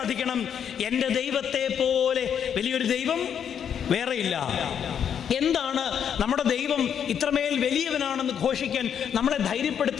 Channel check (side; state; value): right; quieter; 8.4 dB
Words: എൻ്റെ ദൈവത്തെ പോലെ വലിയൊരു ദൈവം വേറെയില്ല. എന്താണ് നമ്മുടെ ദൈവം ഇത്രമേൽ വലിയവനാണെന്ന് ഘോഷിക്കാൻ നമ്മളെ